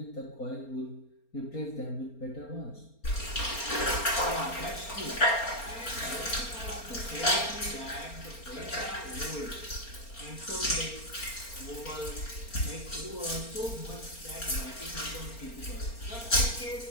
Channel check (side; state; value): right; late; 4.3 ms